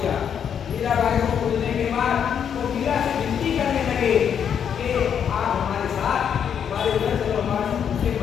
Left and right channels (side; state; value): right; quieter; 8.1 dB